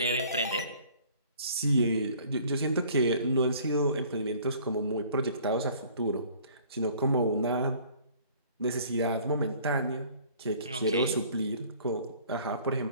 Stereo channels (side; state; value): both; inverted; correlation -0.53